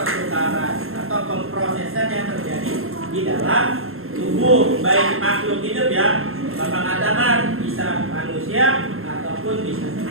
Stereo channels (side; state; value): left; late; 0.61 ms